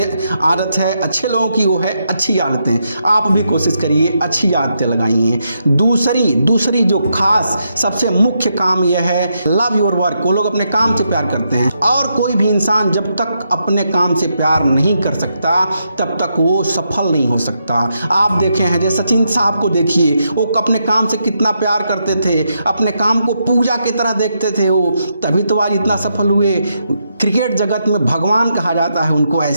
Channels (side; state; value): both; inverted; correlation -0.81